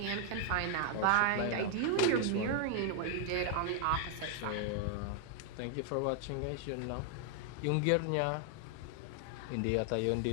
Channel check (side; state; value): both; different; correlation 0.00